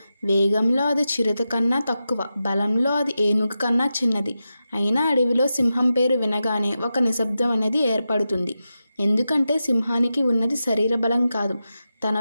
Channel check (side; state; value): both; inverted; correlation -0.91